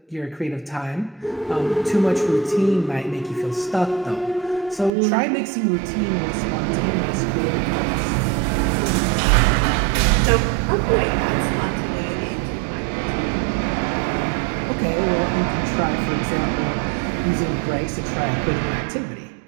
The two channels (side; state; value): left; drops out; at 4.9 s